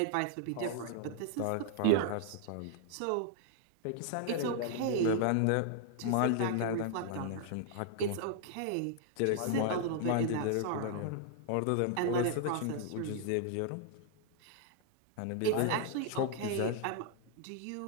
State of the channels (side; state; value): both; different; correlation -0.01